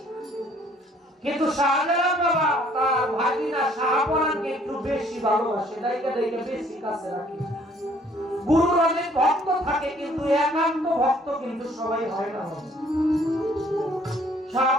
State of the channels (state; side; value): normal; both; correlation 0.60